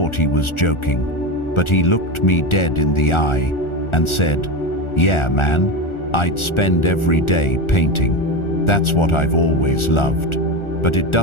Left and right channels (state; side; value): late; right; 1.4 ms